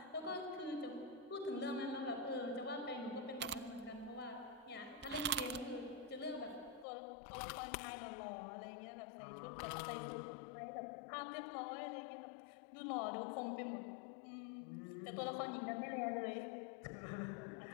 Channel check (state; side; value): drops out; right; at 6.9 s